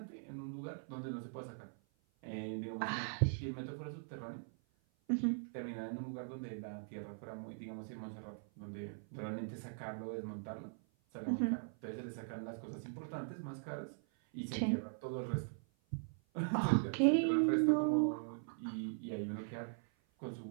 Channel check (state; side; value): silent; left; 51 dB below the other